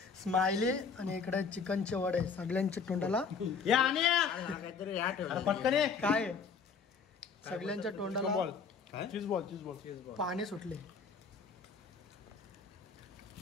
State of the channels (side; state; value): right; quieter; 5.5 dB